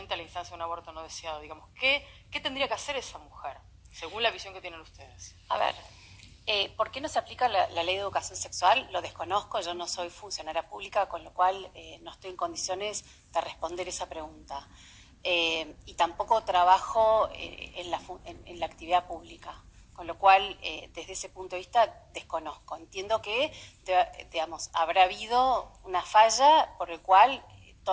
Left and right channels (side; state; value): both; identical; correlation 1.00